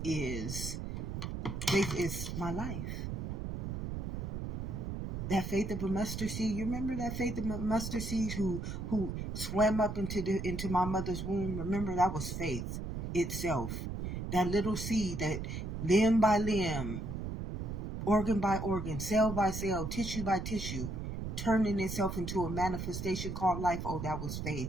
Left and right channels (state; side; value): noise; right; rumble, 4 dB below the sound